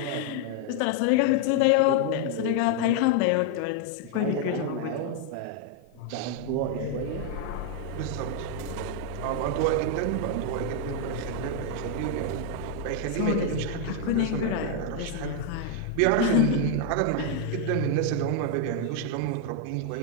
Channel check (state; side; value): different; both; correlation 0.00